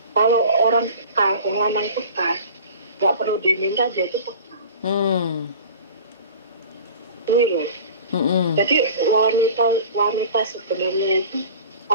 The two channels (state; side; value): inverted; both; correlation -0.40